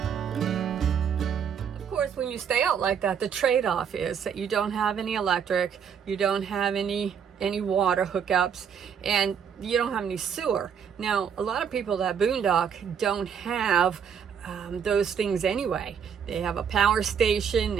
When you stay out like that, the trade-off is that you don't have any electric, you don't have any water hookups, and you don't have any sewer. Now, a lot of people that boondock don't have those things anyway. They have a power station,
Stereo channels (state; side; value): quieter; left; 7.5 dB